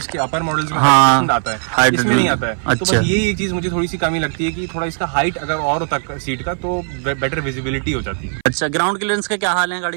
अपर मॉडल्स में आता है, इसमें नहीं आता है। अच्छा। तो बस ये एक चीज मुझे थोड़ी सी कमी लगती है कि थोड़ा इसका हाइट अगर और होता सीट का तो बेटर विजिबिलिटी हो जाती है। अच्छा, ग्राउंड क्लियरेंस का क्या हाल है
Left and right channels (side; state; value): left; silent; 57 dB below the other